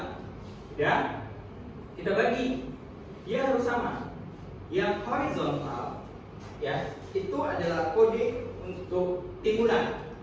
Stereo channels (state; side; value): identical; both; correlation 1.00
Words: Ya, kita bagi, dia harus sama. Yang horizontal, ya, itu adalah kode untuk timbunan.